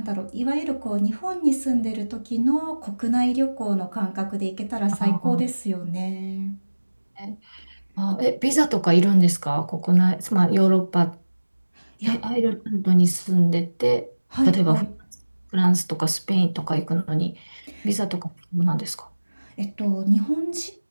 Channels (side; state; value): both; inverted; correlation -1.00